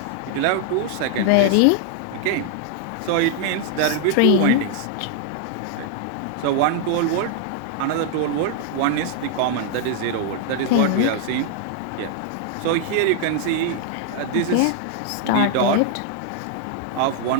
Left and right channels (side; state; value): both; different; correlation 0.00